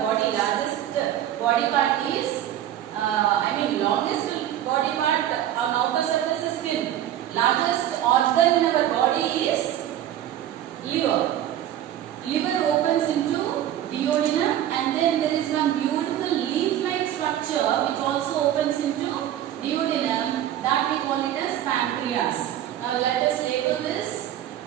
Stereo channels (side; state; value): left; quieter; 11.8 dB